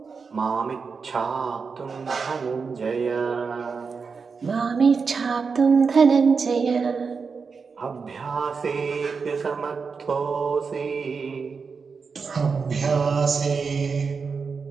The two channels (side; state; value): left; quieter; 5.2 dB